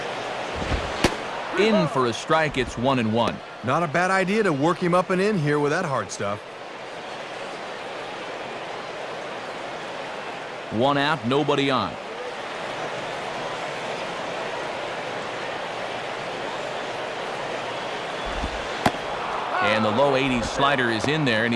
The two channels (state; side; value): identical; both; correlation 1.00